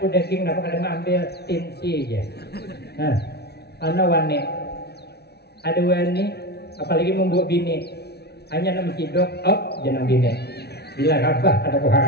daging napa kada ambil tinsi aja. Nah, ana wani ada wani apalagi membuat bini hanya nama cidok jangan bini bila rabah ada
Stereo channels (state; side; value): late; right; 0.48 ms